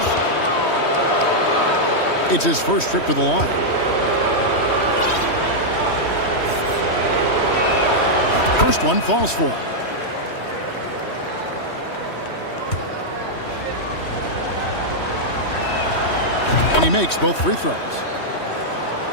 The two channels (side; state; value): right; late; 3.1 ms